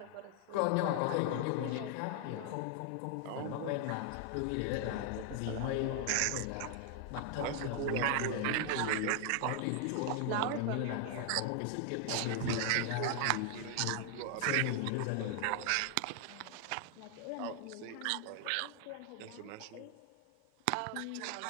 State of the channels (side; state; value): both; different; correlation 0.00